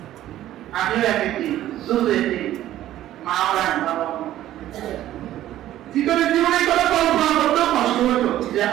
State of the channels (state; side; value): quieter; left; 13.3 dB